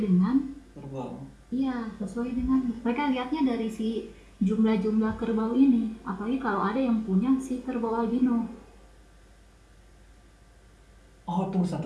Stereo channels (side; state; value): both; identical; correlation 1.00